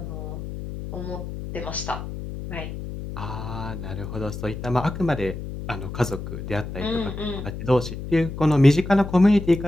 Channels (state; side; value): noise; left; hum, 8 dB below the sound